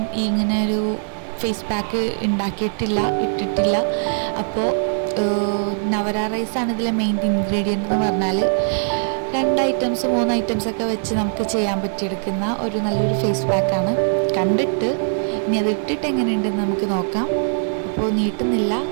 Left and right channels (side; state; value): left; silent; 65 dB below the other